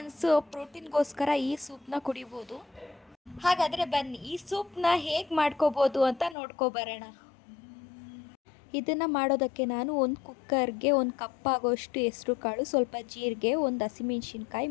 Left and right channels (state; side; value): drops out; right; at 6.4 s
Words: ಪ್ರೋಟೀನ್ಗೋಸ್ಕರ ಈ ಸೂಪ್ನ ಕುಡಿಬೋದು. ಹಾಗಾದರೆ ಬನ್ನಿ ಈ ಸೂಪ್ನ ಹೇಗೆ ಮಾಡ್ಕೋಬೋದು ಅಂತ ನೋಡ್ಕೊಬರೋಣ. ಇದನ್ನು ಮಾಡೋದಕ್ಕೆ ನಾನು ಒಂದು ಕುಕ್ಕರ್ಗೆ 1 ಕಪ್ ಆಗೋಷ್ಟು ಹೆಸರು ಕಾಳು, ಸ್ವಲ್ಪ ಜೀರಿಗೆ, 1 ಹಸಿಮೆಣ್ಸಿನ್ಕಾಯಿ,